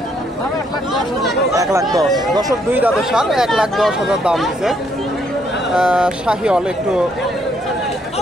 1,10,000। দর্শক 2 দাঁতের সার 1,10,000 দাম দিছে। শাহিওয়াল, একটু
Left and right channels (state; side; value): normal; both; correlation 0.71